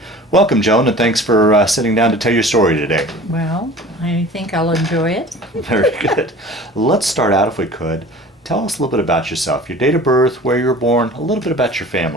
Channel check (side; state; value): both; normal; correlation 0.42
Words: Welcome, Joan, and thanks for sitting down to tell your story today. Well, I think I'll enjoy it. Very good. Let's start out, if we could. Tell us a little bit about yourself, your date of birth, where you were born, a little bit about your